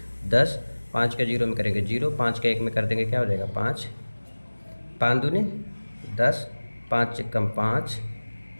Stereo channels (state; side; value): inverted; both; correlation -1.00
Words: 10, 5 का 0 में करेंगे 0, 5 का 1 में कर देंगे, क्या हो जाएगा 5, 5 दूनी 10, 5 एकम 5,